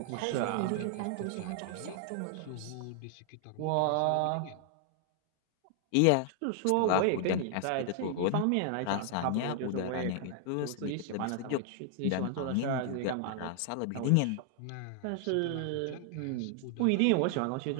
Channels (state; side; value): different; both; correlation 0.00